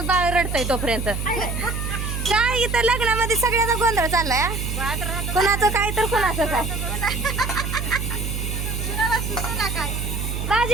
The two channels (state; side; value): noise; right; hum, 3 dB below the sound